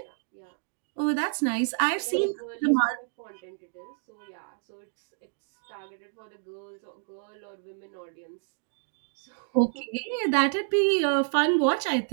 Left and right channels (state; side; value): silent; left; 58 dB below the other